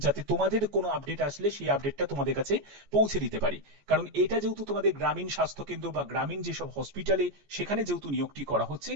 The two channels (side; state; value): left; late; 14 ms